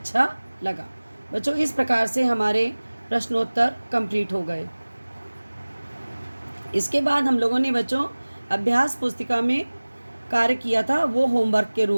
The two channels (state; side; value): inverted; both; correlation -1.00